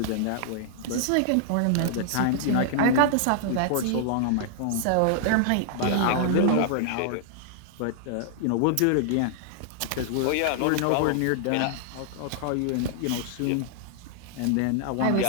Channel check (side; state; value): both; different; correlation -0.01